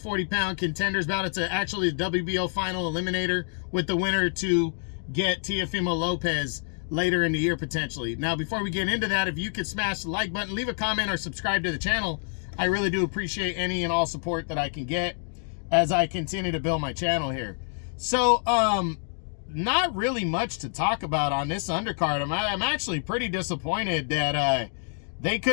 contenders bout. It's actually the WBO final eliminator, with the winner to get Teofimo Lopez later in the year potentially. Now, before we get into that, if you could smash the like button, leave a comment, or subscribe to the channel, I really do appreciate any and all support that I can get as I continue to build my channel here. So not really much to talk about on this undercard. I'm actually pretty disappointed that they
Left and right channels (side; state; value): right; silent; 55 dB below the other